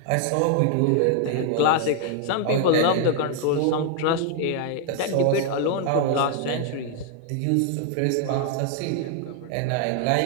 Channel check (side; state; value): both; different; correlation 0.00